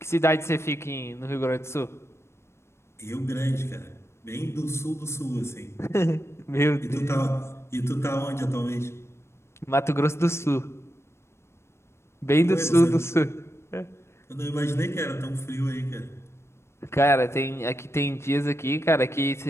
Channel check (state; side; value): late; right; 0.13 ms